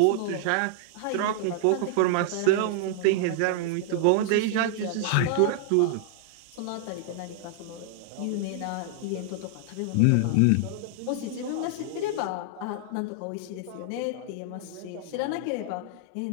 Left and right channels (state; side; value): different; both; correlation -0.01